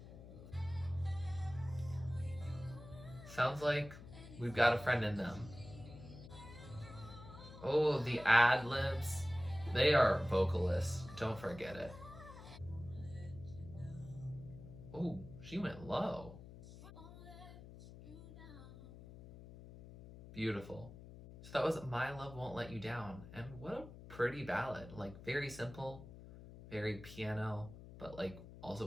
Sounds like we've got a friend in them. Oh, the ad libs. They are vocalists. Don't forget it. Oh, she went low. Beautiful. So that was My Love Won't Let You Down. And what a pretty ballad. Like, very simple, very piano, but like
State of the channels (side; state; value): left; noise; hum, 15 dB below the sound